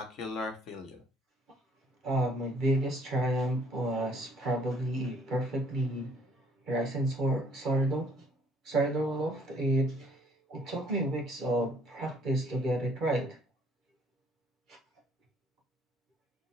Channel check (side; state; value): both; normal; correlation 0.62